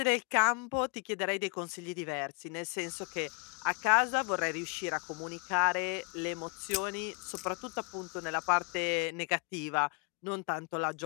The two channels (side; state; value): right; quieter; 31.8 dB